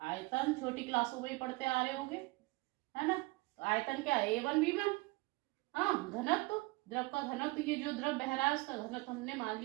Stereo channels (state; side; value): quieter; left; 23.1 dB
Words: आयतन, छोटी क्लासों में ही पढ़ते आ रहे होंगे, है ना। तो आयतन क्या है, A1 V1। हाँ, घनत्व, द्रव का घनत्व, ये जो द्रव बह रहा है उसका घनत्व हमने मान